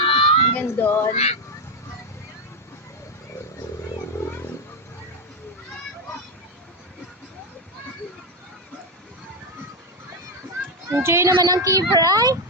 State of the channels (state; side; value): normal; both; correlation 0.07